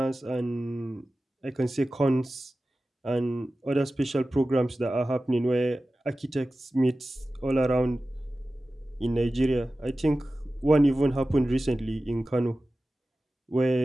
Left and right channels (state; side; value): normal; both; correlation 0.95